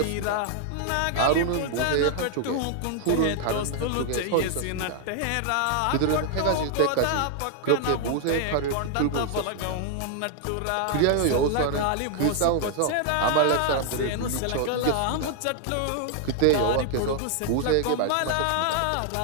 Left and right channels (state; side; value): different; both; correlation 0.00